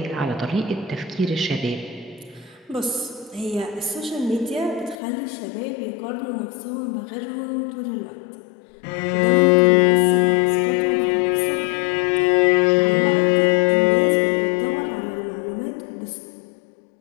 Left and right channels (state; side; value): drops out; right; at 5.0 s